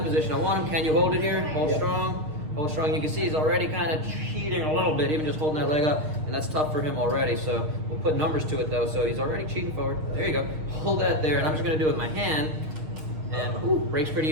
position. I want him, can you hold it here? Hold strong, hold strong. You can see he's already kind of cheating a little bit, even just holding that leg up, and that's tough for him already. So we'll put numbers to it though. So he's already cheating forward. There you go. Hold that there, and I'm just gonna do it with my hand, and breaks pretty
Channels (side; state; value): left; late; 6.5 ms